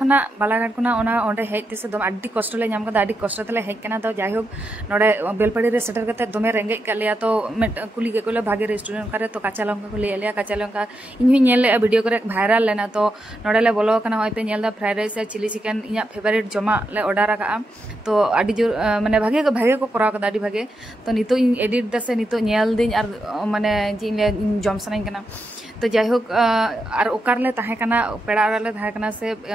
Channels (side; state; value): both; normal; correlation 0.85